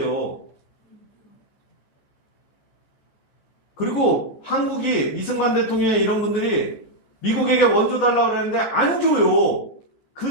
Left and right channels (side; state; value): right; late; 14 ms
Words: 그리고 한국이 이승만 대통령의 이런 분들이 미국에게 원조 달라고 그러는데 안 줘요. 그